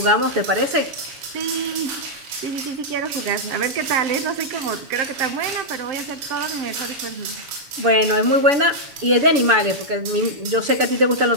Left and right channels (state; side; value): late; left; 7.0 ms